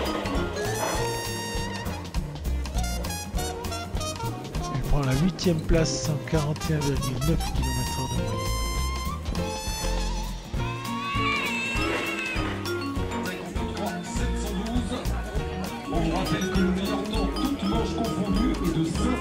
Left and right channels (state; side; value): identical; both; correlation 1.00